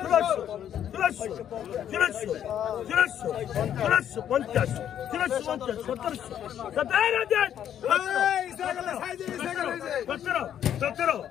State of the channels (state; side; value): quieter; right; 10.0 dB